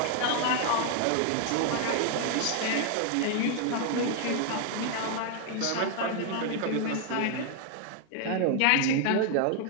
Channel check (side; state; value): both; different; correlation 0.00